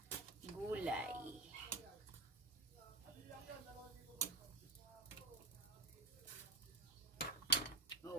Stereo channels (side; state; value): left; quieter; 3.2 dB